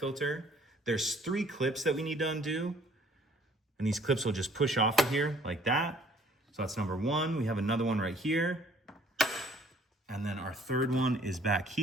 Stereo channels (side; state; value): both; normal; correlation 0.58